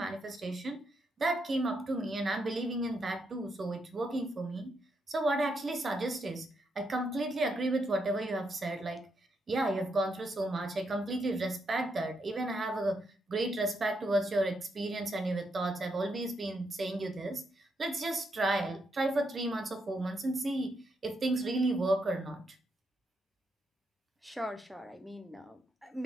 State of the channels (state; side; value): normal; both; correlation 0.80